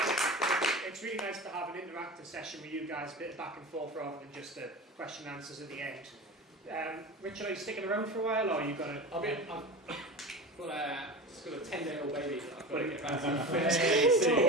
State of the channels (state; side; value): normal; both; correlation 0.30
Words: interactive session with you guys, a bit of back and forth rather than just the question and answers at the end. Richard, are you sticking around for a while, or are you going to... I've got a 10-day-old baby that I've got to get back to.